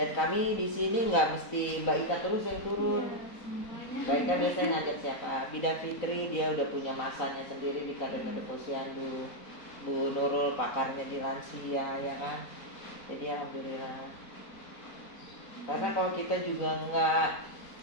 kami di sini nggak mesti Mbak Ika terus yang turun. Mbak Ika biasanya ngajak siapa? Bidan Fitri dia udah punya masanya sendiri di kader-kader posyandu. Bu Nurul pakarnya di lansia ya kan. Jadi alhamdulillah. Karena kalau kita juga nggak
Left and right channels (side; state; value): right; late; 4.0 ms